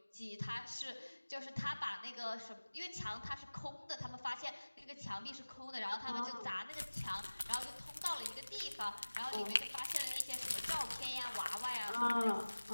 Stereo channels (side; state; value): both; inverted; correlation -1.00